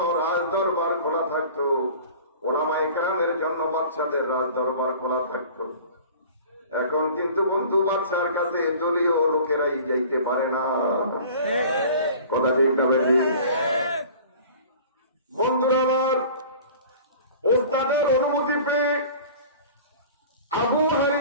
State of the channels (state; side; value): inverted; both; correlation -0.44